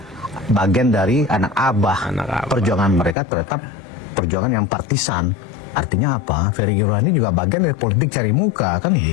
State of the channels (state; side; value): drops out; right; at 3.2 s